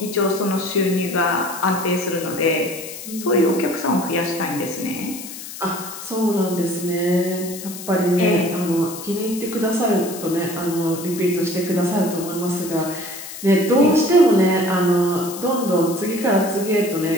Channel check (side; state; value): left; noise; hiss, 11 dB below the sound